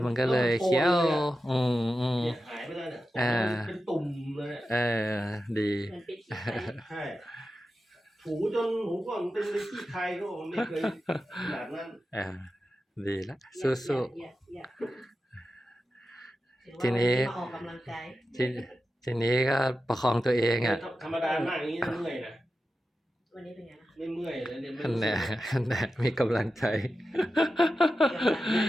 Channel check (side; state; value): both; normal; correlation 0.92